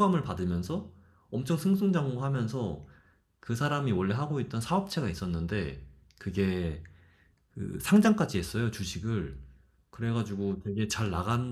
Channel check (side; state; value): both; identical; correlation 1.00